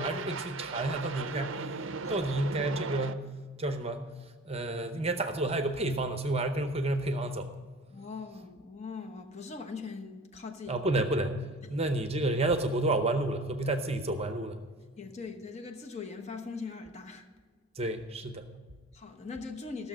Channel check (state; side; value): normal; both; correlation 0.43